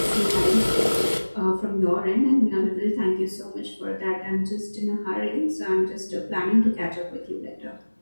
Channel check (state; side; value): inverted; both; correlation -1.00